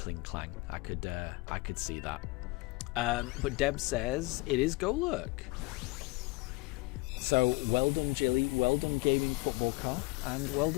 Clang. I could see that. But Deb says it is Golurk. So well done, Jilly. Well done, Gaming Football Car, and well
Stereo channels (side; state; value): right; quieter; 23.1 dB